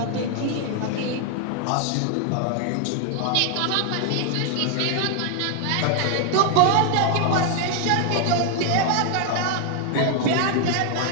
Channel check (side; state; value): both; different; correlation 0.00